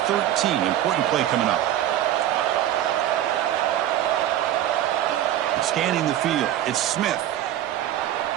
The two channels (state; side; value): quieter; left; 12.1 dB